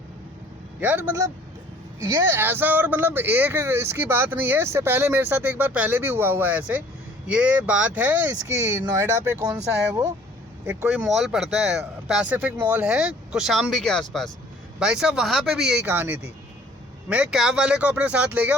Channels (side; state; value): both; normal; correlation 0.54